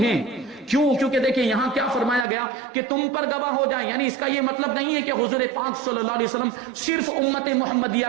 کیوں؟ کیونکہ دیکھیں یہاں کیا فرمایا گیا کہ تم پر گواہ ہو جائیں، یعنی اس کا یہ مطلب نہیں ہے کہ حضور پاک صلی اللہ علیہ وسلم صرف امت محمدیہ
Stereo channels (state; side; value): drops out; left; at 2.2 s